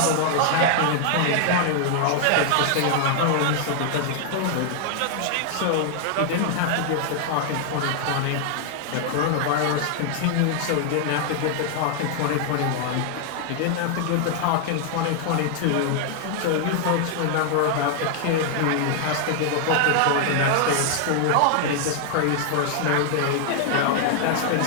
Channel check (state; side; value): different; both; correlation 0.00